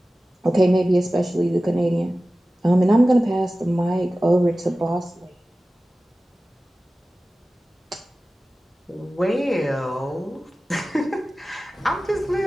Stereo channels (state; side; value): normal; both; correlation 0.96